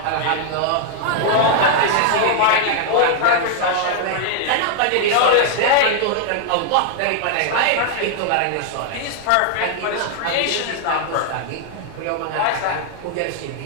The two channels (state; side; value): different; both; correlation 0.00